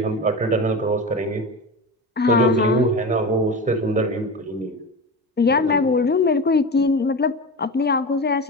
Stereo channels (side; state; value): both; normal; correlation 0.25